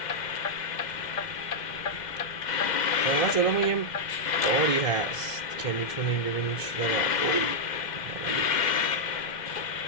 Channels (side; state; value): right; late; 2.0 ms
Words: واقعا جلومون یه باری هست که میتونیم ببینیم چی داره.